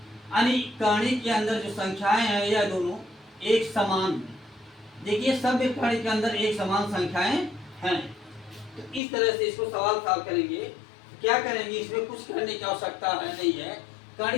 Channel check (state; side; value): drops out; right; at 9.0 s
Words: यानी कणी के अंदर जो संख्याएं हैं यह दोनों एक समान हैं। देखिए सब कणी के अंदर एक समान संख्याएं हैं। तो इस तरह से इसको सवाल सॉल्व करेंगे। क्या करेंगे, इसमें कुछ करने की आवश्यकता नहीं है।